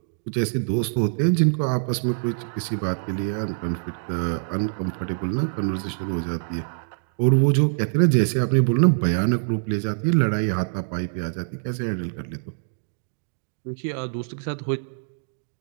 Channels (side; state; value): left; silent; digital silence